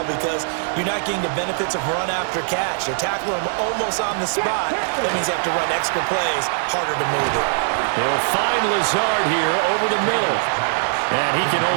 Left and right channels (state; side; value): silent; left; digital silence